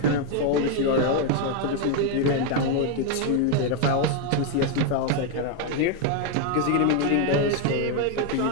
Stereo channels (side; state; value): both; different; correlation 0.01